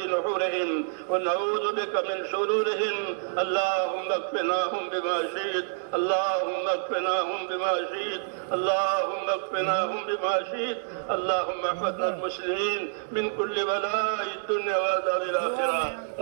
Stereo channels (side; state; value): left; silent; digital silence